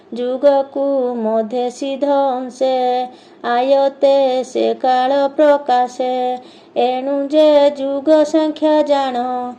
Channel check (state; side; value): identical; both; correlation 1.00